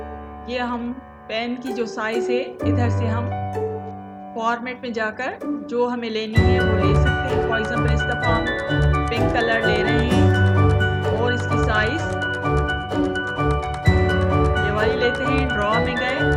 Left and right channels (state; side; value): identical; both; correlation 1.00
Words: ये हम पेन की जो साइज है इधर से हम फॉर्मेट में जाकर जो हमें लेनी है वो ले सकते हैं। फॉर एग्जाम्पल इस दफा हम पिंक कलर ले रहे हैं और इसकी साइज ये वाली लेते हैं। ड्रॉ में गए